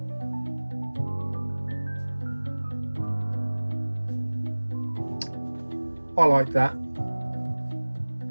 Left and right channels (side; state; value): both; inverted; correlation -1.00